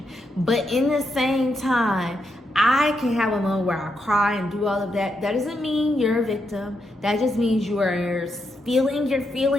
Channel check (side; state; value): both; normal; correlation 0.82